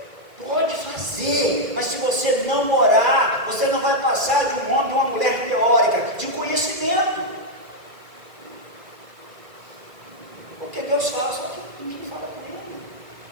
Pode fazer, mas se você não orar, você não vai passar de um homem, de uma mulher teórica, de conhecimento. Porque Deus fala, só que ninguém fala com Ele.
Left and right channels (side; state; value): left; late; 2.3 ms